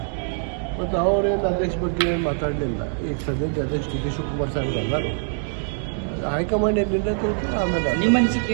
ಮತ್ತು ಅವರೇನು ಅಧ್ಯಕ್ಷ ಬಗ್ಗೆ ಏನು ಮಾತಾಡಲಿಲ್ಲ. ಈಗ ಸದ್ಯಕ್ಕೆ ಅಧ್ಯಕ್ಷ ಡಿ ಕೆ ಶಿವಕುಮಾರ್ ಸಾಹೇಬ್ ಅದಾರು. ಹೈಕಮಾಂಡ್ ಏನು ನಿರ್ಣಯ ತಗೋತಾರೆ ಆಮೇಲೆ. ನಿಮ್ಮ ಅನಿಸಿಕೆ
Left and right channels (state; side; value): silent; left; 60 dB below the other